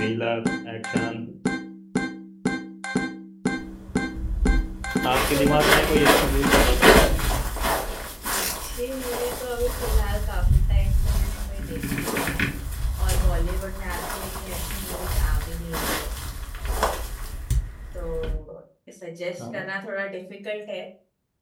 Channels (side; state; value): both; identical; correlation 1.00